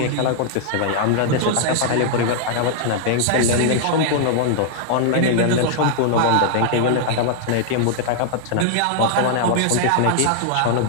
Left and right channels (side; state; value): both; different; correlation -0.01